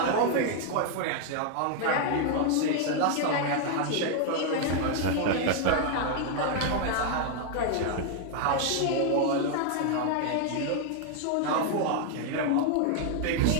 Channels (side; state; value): both; different; correlation 0.00